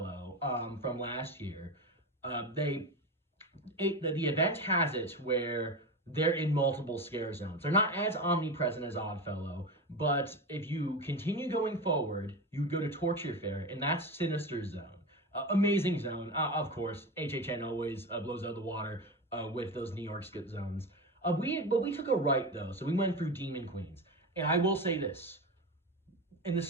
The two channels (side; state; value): both; normal; correlation 0.22